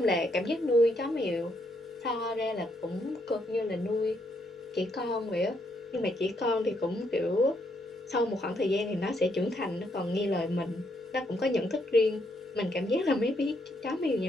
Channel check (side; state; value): both; normal; correlation 0.75